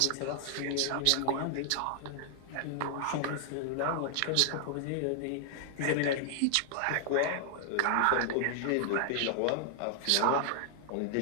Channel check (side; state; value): both; different; correlation 0.00